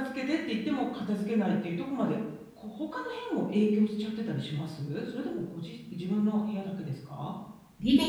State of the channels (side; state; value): both; identical; correlation 1.00